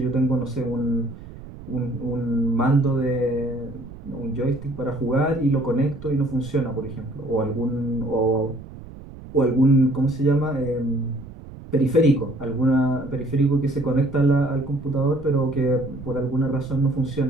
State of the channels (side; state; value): right; noise; rumble, 15 dB below the sound